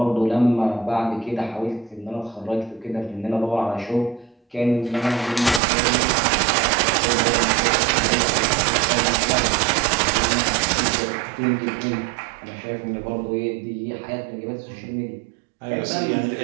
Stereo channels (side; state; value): left; drops out; at 5.6 s